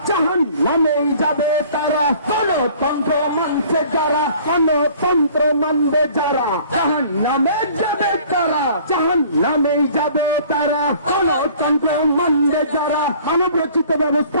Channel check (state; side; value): inverted; both; correlation -0.52